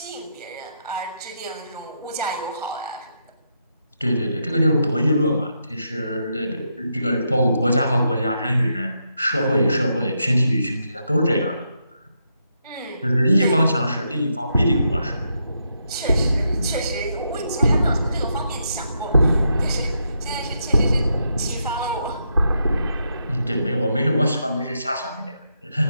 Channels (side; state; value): both; inverted; correlation -0.81